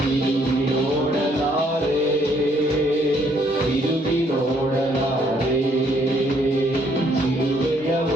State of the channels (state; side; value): normal; both; correlation 0.67